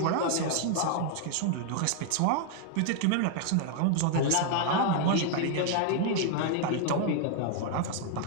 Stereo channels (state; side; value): different; both; correlation 0.00